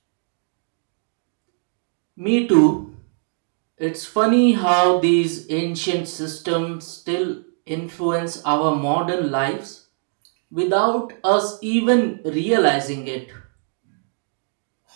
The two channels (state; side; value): silent; left; digital silence